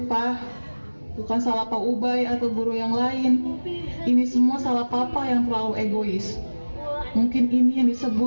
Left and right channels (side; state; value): both; inverted; correlation -1.00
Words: Pak, bukan salah Pak Ubay atau guru yang lain. Ini semua salah Papa yang terlalu egois. Mungkin ini yang